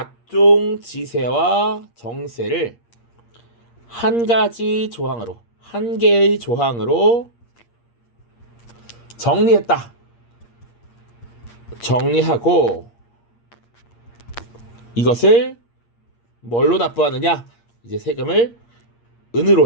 지세와 정세를 한 가지 조항으로, 한 개의 조항으로 정리했다. 정리하고 이것을 뭘로 납부하느냐? 이제 세금을 은으로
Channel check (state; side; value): late; right; 8.6 ms